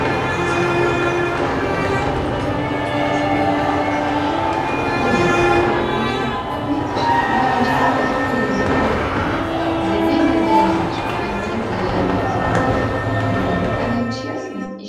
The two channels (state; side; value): identical; both; correlation 1.00